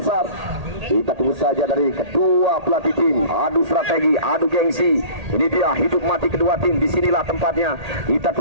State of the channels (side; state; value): left; late; 1.8 ms